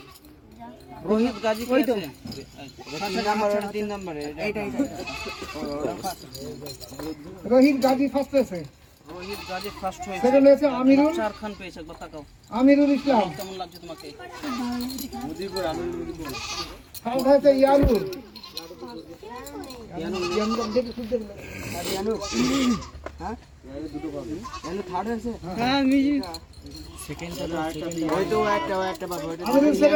রোহিত গাজী ওই তো 3 নম্বরে রোহিত গাজী ফার্স্ট হয়েছে। রোহিত গাজী ফার্স্ট হয়েছে সেকেন্ড হয়েছে আমিরুল, চার খান পেয়েছে একবার তাকাও আমিরুল ইসলাম। কেমন লাগছে তোমাকে থার্ড হয়েছে ইয়ানুর, হ্যাঁ মিউজিক আমিরুল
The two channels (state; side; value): identical; both; correlation 1.00